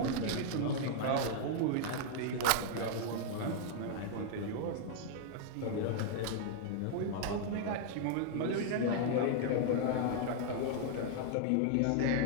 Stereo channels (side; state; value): both; different; correlation -0.01